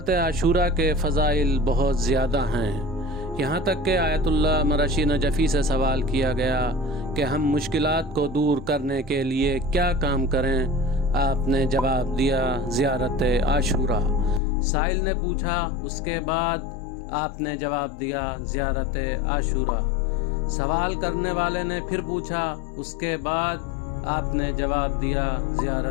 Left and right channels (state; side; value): drops out; right; at 14.4 s